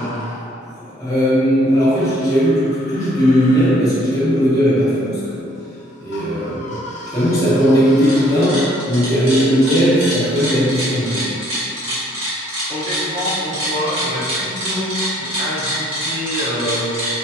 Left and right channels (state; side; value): normal; both; correlation 0.63